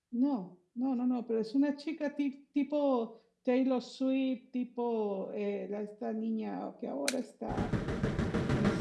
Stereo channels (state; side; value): identical; both; correlation 1.00